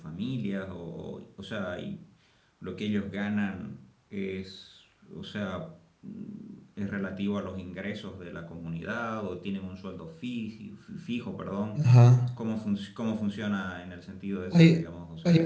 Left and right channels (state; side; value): identical; both; correlation 1.00